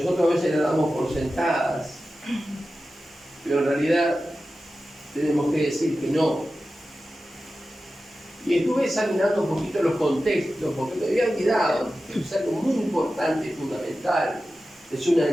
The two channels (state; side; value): normal; both; correlation 0.94